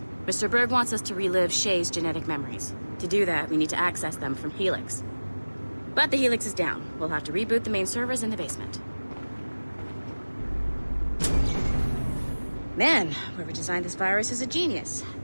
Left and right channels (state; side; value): inverted; both; correlation -1.00